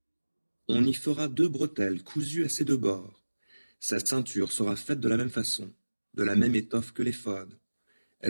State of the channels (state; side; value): inverted; both; correlation -1.00